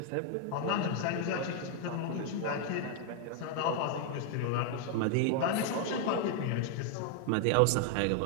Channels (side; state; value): both; different; correlation 0.00